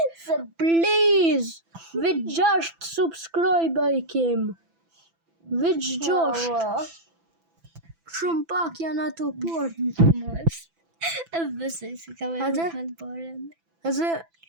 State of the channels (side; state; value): left; late; 6.0 ms